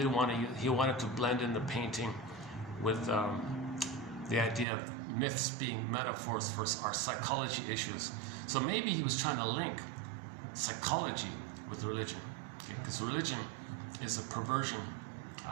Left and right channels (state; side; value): drops out; left; at 4.7 s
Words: want to. He wanted to blend in the painting with the idea of myths being metaphors for our psychology issues. So maybe he was trying to link psychology with religion, because religion is a perversion.